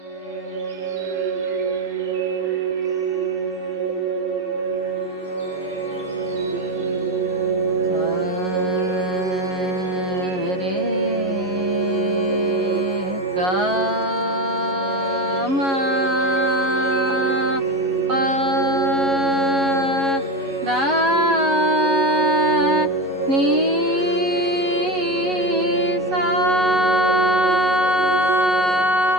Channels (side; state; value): both; normal; correlation 0.19